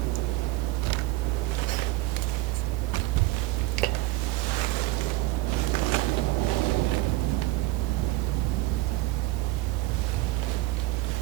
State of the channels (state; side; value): quieter; left; 18.1 dB